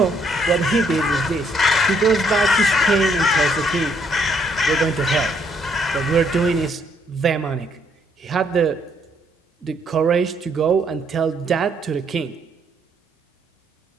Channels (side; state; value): both; normal; correlation 0.70